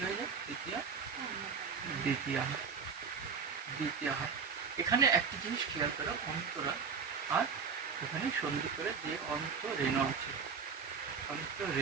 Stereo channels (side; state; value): left; quieter; 5.8 dB